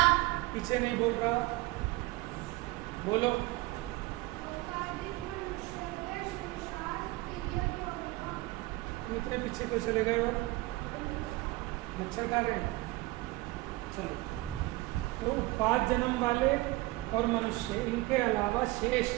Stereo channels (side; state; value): left; quieter; 20.6 dB